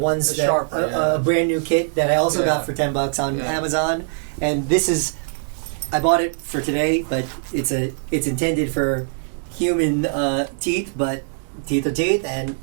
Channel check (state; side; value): silent; left; 64 dB below the other